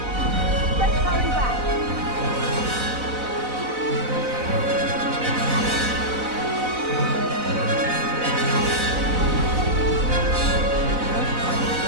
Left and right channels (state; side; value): late; left; 4.0 ms